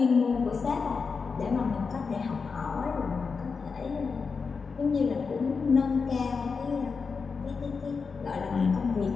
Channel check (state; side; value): quieter; right; 5.1 dB